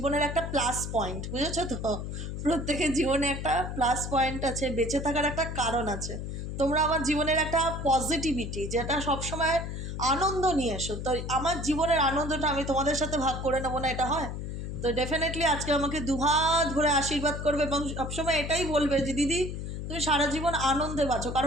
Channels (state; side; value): noise; left; hum, 6 dB below the sound